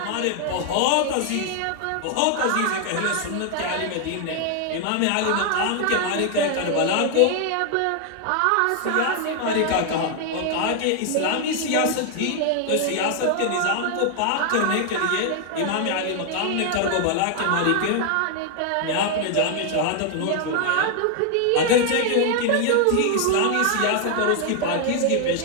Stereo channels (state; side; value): different; both; correlation 0.00